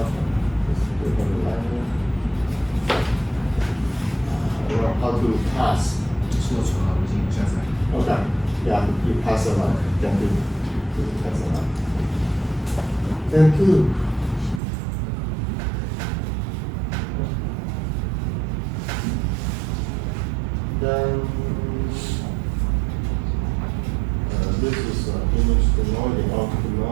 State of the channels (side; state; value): left; drops out; at 14.6 s